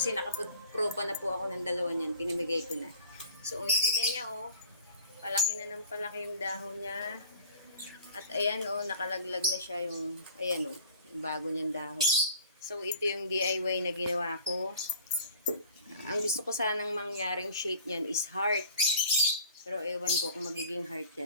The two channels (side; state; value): both; inverted; correlation -0.47